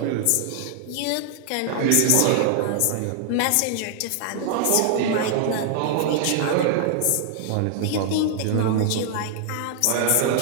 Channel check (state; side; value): different; both; correlation 0.00